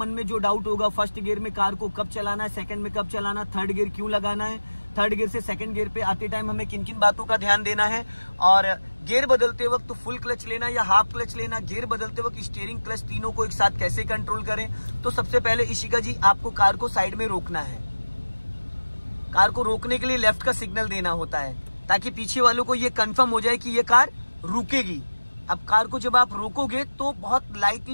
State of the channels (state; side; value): inverted; both; correlation -1.00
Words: में जो डाउट होगा, फर्स्ट गियर में कार को कब चलाना है, सेकंड में कब चलाना, थर्ड गियर क्यों लगाना है, थर्ड गियर से सेकंड गियर पे आते टाइम हमें किन किन बातों का ध्यान देना है, और गियर बदलते वक्त तो फुल क्लच लेना या हाफ क्लच लेना, गियर बदलते वक्त स्टीयरिंग क्लच तीनों को एक साथ कैसे कंट्रोल करें। तो सबसे पहले इशिका जी, आपको कार को साइड में रोकना है। कार को रोकने के लिए लेफ्ट का सिग्नल देना होता है, ताकि पीछे वालों को ये कंफर्म हो जाए कि ये कार रुकेगी। अब कार को जब आप रोकोगे तो बहुत